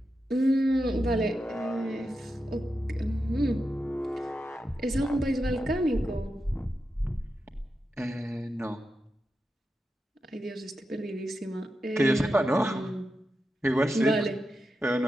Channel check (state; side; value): normal; both; correlation 0.89